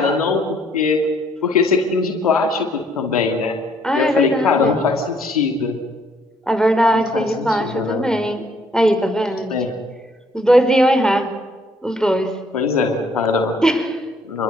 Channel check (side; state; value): both; normal; correlation 0.65